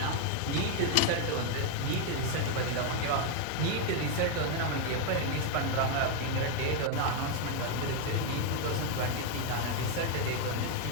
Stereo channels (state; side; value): different; both; correlation 0.01